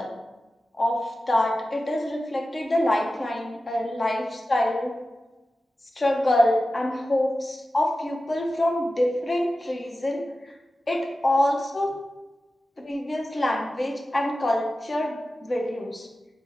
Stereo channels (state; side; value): normal; both; correlation 0.94